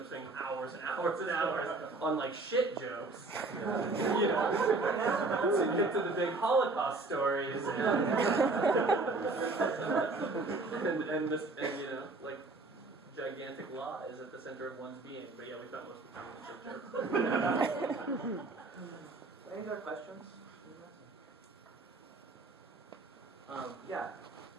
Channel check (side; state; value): left; quieter; 3.4 dB